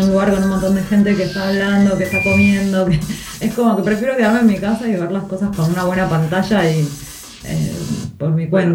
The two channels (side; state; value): both; identical; correlation 1.00